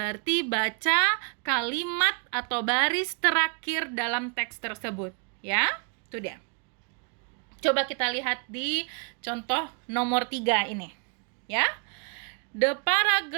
baca kalimat atau baris terakhir dalam teks tersebut. Ya, itu dia. Coba kita lihat di contoh nomor 3 ini, ya. The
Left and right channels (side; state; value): left; quieter; 38.0 dB